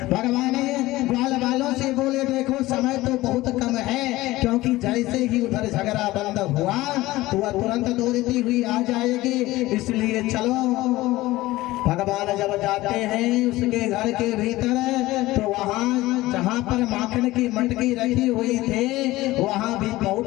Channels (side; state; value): right; quieter; 18.1 dB